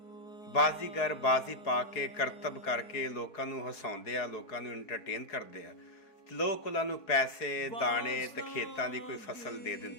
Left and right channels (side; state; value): right; late; 4.7 ms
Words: ਬਾਜ਼ੀਗਰ ਬਾਜ਼ੀ ਪਾ ਕੇ ਕਰਤੱਵ ਕਰਕੇ ਲੋਕਾਂ ਨੂੰ ਹਸਾਉਂਦੇ ਆ, ਲੋਕਾਂ ਨੂੰ ਐਂਟਰਟੇਨ ਕਰਦੇ ਆ। ਲੋਕ ਉਹਨਾਂ ਨੂੰ ਪੈਸੇ ਦਾਣੇ ਤੇ ਖੇਤਾਂ ਦੀ ਕੋਈ ਫਸਲ ਦੇ